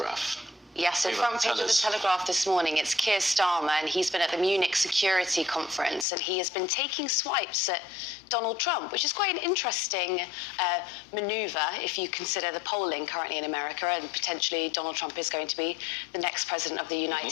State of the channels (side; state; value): right; drops out; at 6.1 s